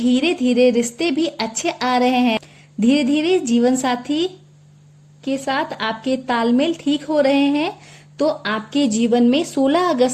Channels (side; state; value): both; identical; correlation 1.00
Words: धीरे रिश्ते भी अच्छे आ रहे हैं। धीरे धीरे जीवन साथी के साथ आपके तालमेल ठीक हो रहे हैं, तो आपके जीवन में 16